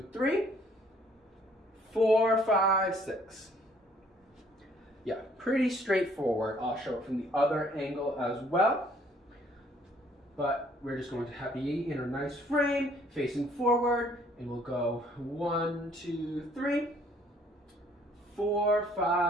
3, 4, 5, 6. Yeah, pretty straightforward. I'll show it from the other angle as well. But we're just going to be in a nice frame, facing forward, and we'll go 1, 2, 3, 4,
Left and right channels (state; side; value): normal; both; correlation 0.62